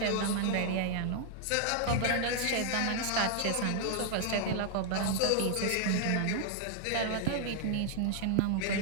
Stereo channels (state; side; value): different; both; correlation 0.00